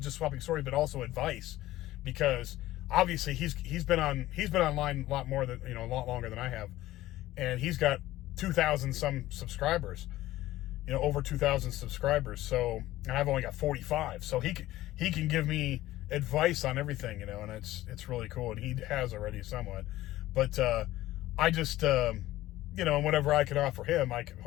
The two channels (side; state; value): right; quieter; 15.8 dB